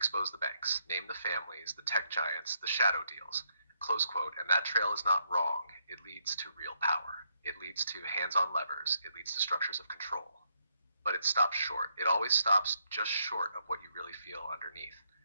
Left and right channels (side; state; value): both; inverted; correlation -0.75